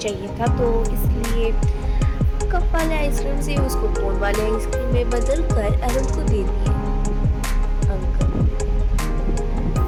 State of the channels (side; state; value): both; identical; correlation 1.00